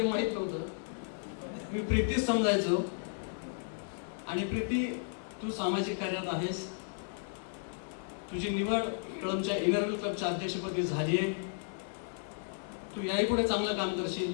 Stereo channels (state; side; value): silent; right; digital silence